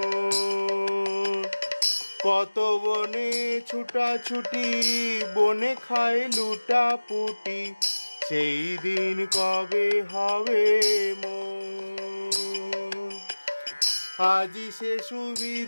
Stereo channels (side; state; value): both; inverted; correlation -1.00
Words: কত বনে ছুটা ছুটি, বনে খাই লুটা পুটি, সেই দিন কবে হবে মোর। আজি সে